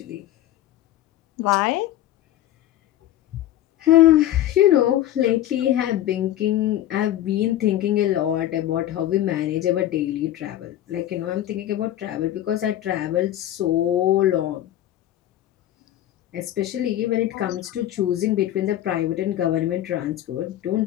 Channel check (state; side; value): quieter; right; 13.0 dB